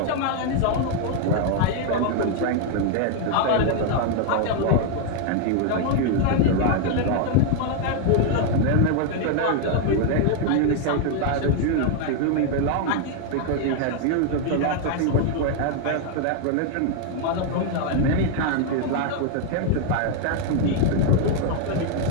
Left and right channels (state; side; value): different; both; correlation 0.00